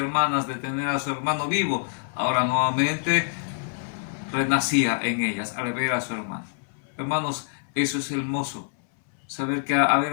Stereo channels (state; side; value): silent; right; 61 dB below the other